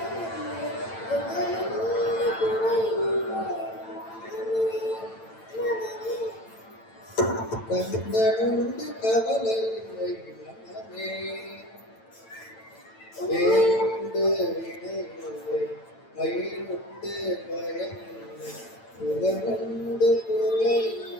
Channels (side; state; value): right; late; 8.9 ms